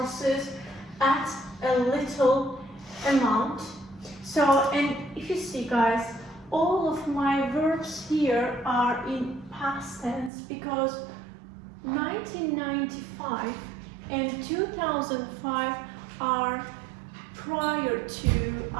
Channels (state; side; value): drops out; left; at 10.3 s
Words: at a little amount. So, and if you see, guys, all of my verbs here are in past tense because 1995 and 2005 are prior to